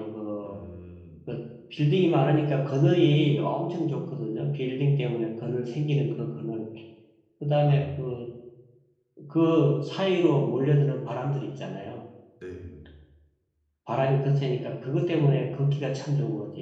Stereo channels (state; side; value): identical; both; correlation 1.00